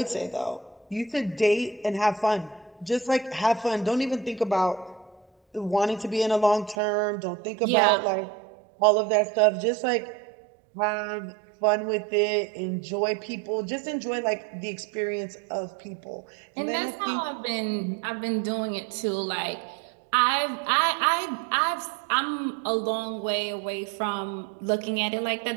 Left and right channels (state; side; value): drops out; left; at 6.8 s